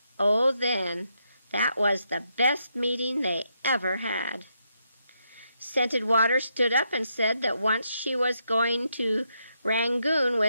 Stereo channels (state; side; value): inverted; both; correlation -0.80